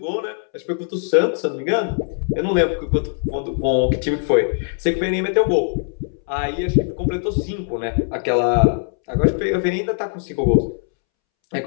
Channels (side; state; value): right; silent; 65 dB below the other